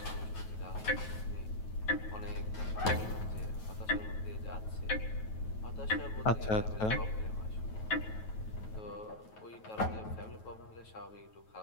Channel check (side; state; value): right; late; 9.2 ms